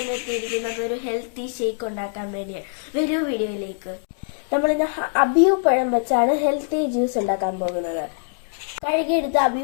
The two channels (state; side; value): silent; right; digital silence